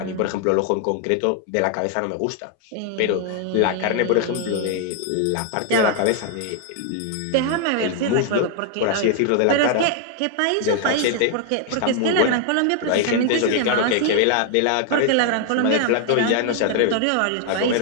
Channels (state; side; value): different; both; correlation 0.00